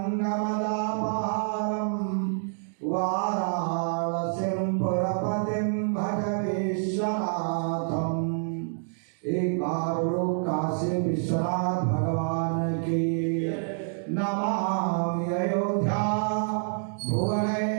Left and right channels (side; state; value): left; silent; digital silence